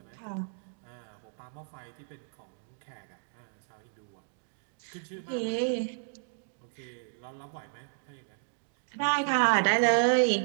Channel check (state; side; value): silent; left; digital silence